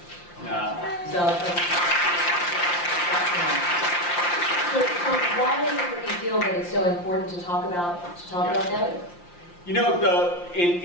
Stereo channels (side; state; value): right; late; 5.7 ms